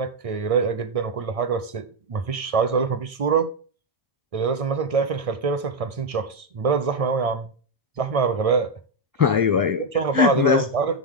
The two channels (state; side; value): late; left; 1.6 ms